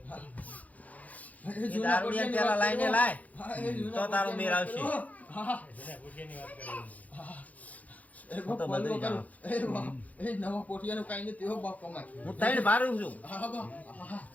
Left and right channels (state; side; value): late; right; 0.075 ms